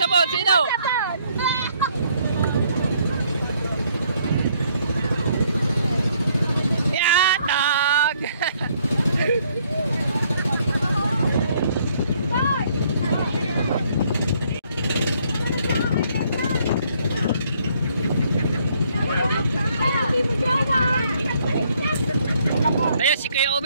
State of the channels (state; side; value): inverted; both; correlation -0.67